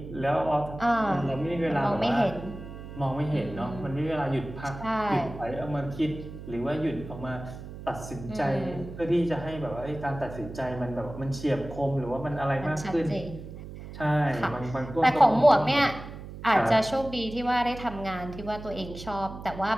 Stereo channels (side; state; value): right; noise; hum, 12 dB below the sound